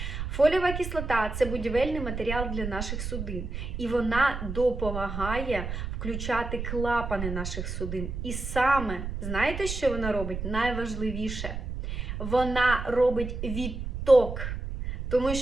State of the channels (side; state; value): right; noise; rumble, 5 dB below the sound